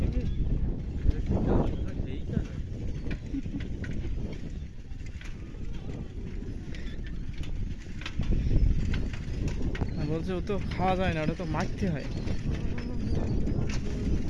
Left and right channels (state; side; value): identical; both; correlation 1.00